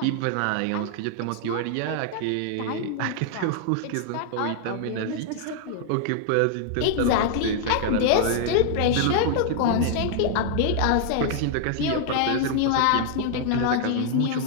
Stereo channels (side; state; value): both; different; correlation 0.00